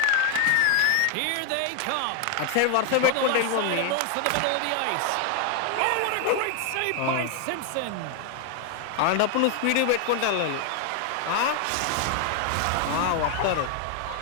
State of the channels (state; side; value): different; both; correlation 0.00